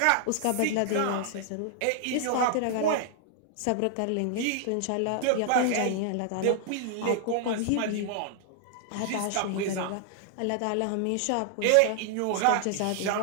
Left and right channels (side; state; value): both; different; correlation 0.00